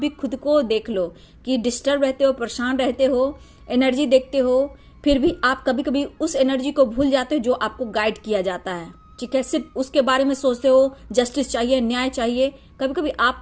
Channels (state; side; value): identical; both; correlation 1.00